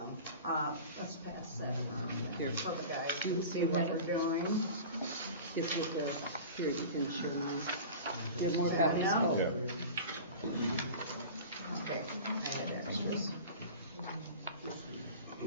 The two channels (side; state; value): both; inverted; correlation -0.36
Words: let's pass that around Here. so the guys You can see have what it? we're doing. Here, you can share mine. You have more copies. Now? Yeah. Okay. I had extras.